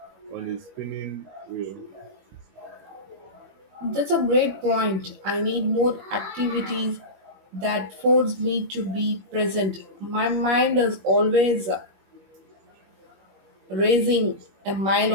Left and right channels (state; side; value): late; left; 21 ms